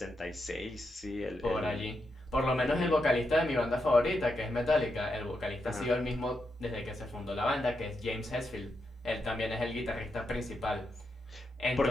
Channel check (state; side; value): normal; both; correlation 0.84